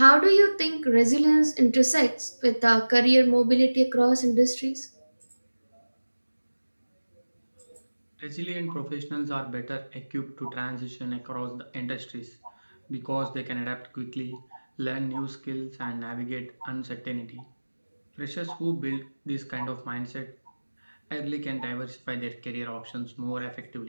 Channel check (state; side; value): inverted; both; correlation -1.00